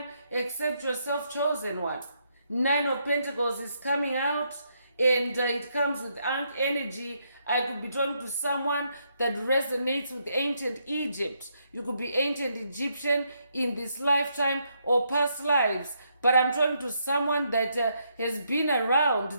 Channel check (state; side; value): inverted; both; correlation -0.76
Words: except yourself, chosen one. 9 of Pentacles is coming out and it comes with Ankh energy. I could be talking to someone that resonates with ancient Egypt. You could be ancient Egyptian in this lifetime or past lives. But I'm talking to someone that has been